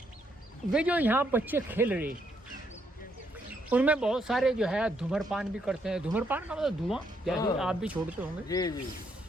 वे जो यहाँ बच्चे खेल रहे, उनमें बहुत सारे धूम्रपान भी करते हैं। धूम्रपान का मतलब धुआं, जैसे आप भी छोड़ते होंगे। जी जी।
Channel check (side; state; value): both; normal; correlation 0.75